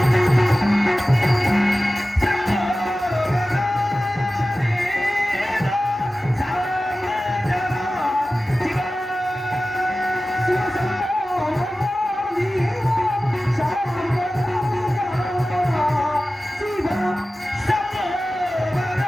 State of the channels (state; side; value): normal; both; correlation 0.95